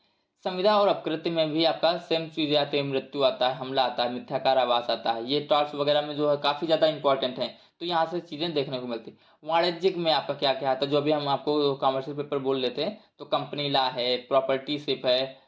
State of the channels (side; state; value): both; identical; correlation 1.00